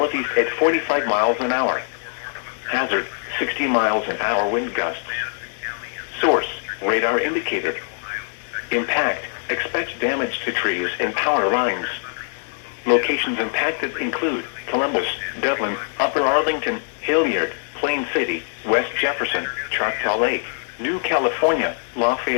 at 45 miles an hour. Hazard, 60 miles an hour wind gusts. Source, radar indicated. Impact, expect damage to trees and power lines. Locations impacted include Columbus, Dublin, Upper Arlington, Hilliard, Plain City, West Jefferson, Choctaw Lake, New California,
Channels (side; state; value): right; silent; 59 dB below the other